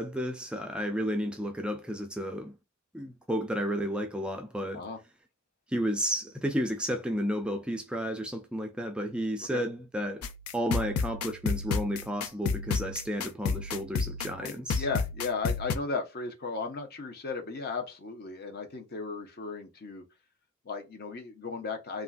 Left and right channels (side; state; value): both; normal; correlation 0.52